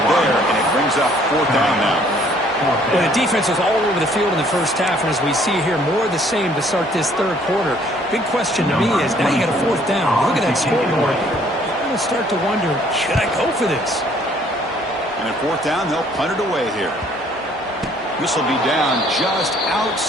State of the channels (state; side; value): normal; both; correlation 0.61